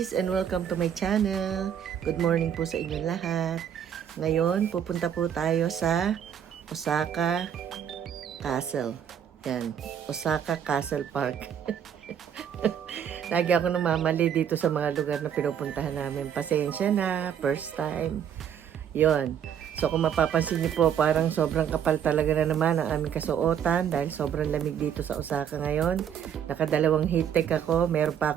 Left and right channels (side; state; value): left; quieter; 8.8 dB